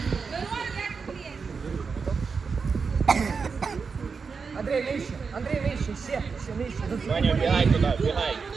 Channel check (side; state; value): left; quieter; 5.2 dB